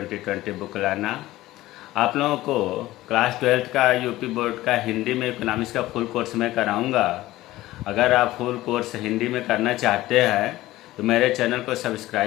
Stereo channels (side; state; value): right; quieter; 16.7 dB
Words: बुकलाना। आप लोगों को क्लास 12 का यूपी बोर्ड का हिंदी में इकोनॉमिक्स का फुल कोर्स मैं कराऊंगा। अगर आप फुल कोर्स हिंदी में करना चाहते हैं तो मेरे चैनल को